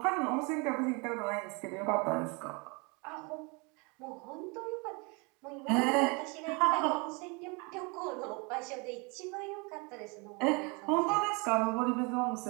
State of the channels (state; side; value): quieter; left; 30.3 dB